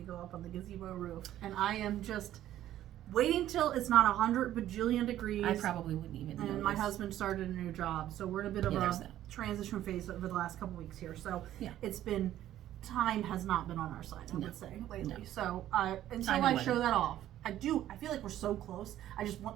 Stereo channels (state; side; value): quieter; left; 12.7 dB